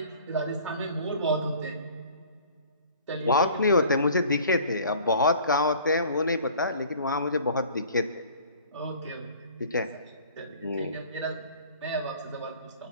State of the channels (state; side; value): inverted; both; correlation -0.49